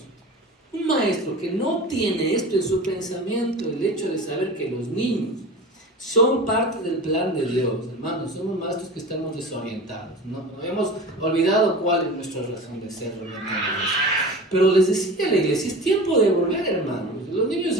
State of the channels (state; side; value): normal; both; correlation 0.34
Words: Un maestro que no tiene esto en su pensamiento, el hecho de saber que los niños son parte del plan de Dios, hermanos, somos maestros que estamos desorientados, ¿no? Hemos olvidado cuál es nuestra razón de ser realmente. Pero les decía a la iglesia, es tiempo de volver, hermanos. Los niños